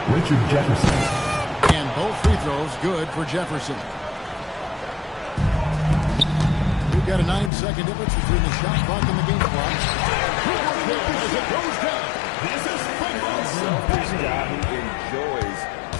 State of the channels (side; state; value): right; drops out; at 7.5 s